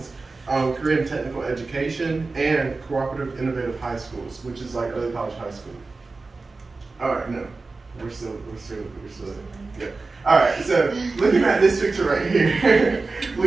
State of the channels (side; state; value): left; quieter; 3.8 dB